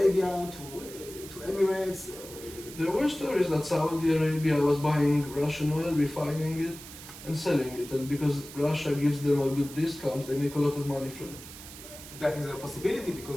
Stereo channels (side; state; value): right; noise; hiss, 15 dB below the sound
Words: to Emirates? There were stories that Saudi Arabia was buying Russian oil, refining it, and selling it, and because Russia gives them a good discount, they make a lot of money from it. That is a possibility,